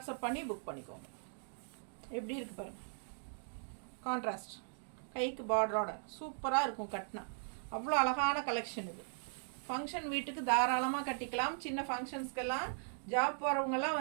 பண்ணி புக் பண்ணிக்கோங்க. எப்படி இருக்குது பாருங்கள். கான்ட்ராஸ்ட் கைக்கு பார்டரோட சூப்பராக இருக்கும் கட்டினா. அவ்வளோ அழகான கலெக்ஷன் இது. ஃபங்க்ஷன் வீட்டுக்கு தாராளமாக கட்டிக்கலாம். சின்ன ஃபங்க்ஷன்ஸ்க்கெல்லாம் ஜாப் போகிறவங்கெல்லாம்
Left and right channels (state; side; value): silent; left; digital silence